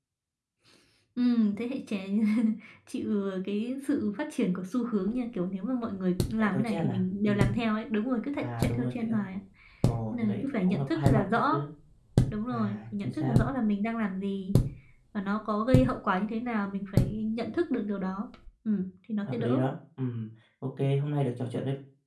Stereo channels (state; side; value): identical; both; correlation 1.00